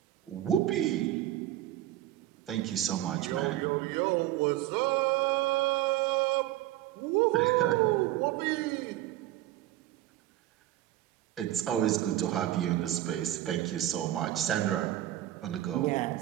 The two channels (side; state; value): left; quieter; 14.3 dB